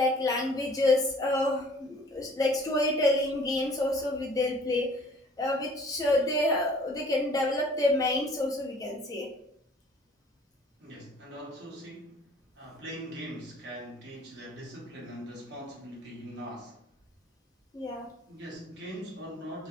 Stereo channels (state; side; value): normal; both; correlation 0.53